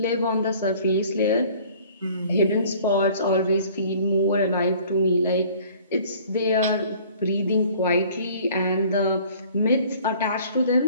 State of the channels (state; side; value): inverted; both; correlation -0.52